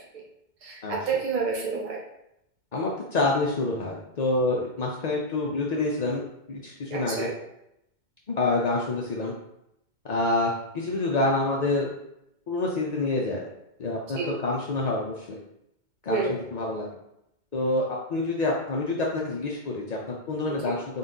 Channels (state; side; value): late; left; 2.2 ms